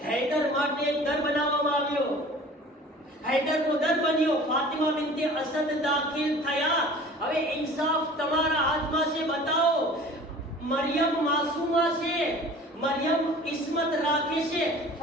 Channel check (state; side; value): normal; both; correlation 0.44